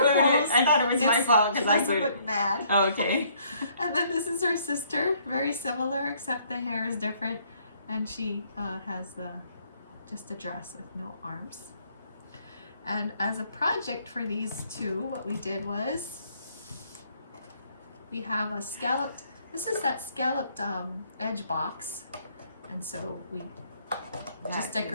it. I thought it was my fault because I doesn't glued it. look mad. Oh, okay. And then this is her sister. Very similar, except the hair is different. And she has just a dress with no arms. And as a project for these two, what we did was we have a scalloped, this is that scalloped edge box. And so we just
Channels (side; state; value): both; inverted; correlation -0.65